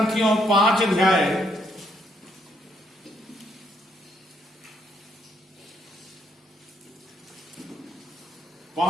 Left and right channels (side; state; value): both; normal; correlation 0.73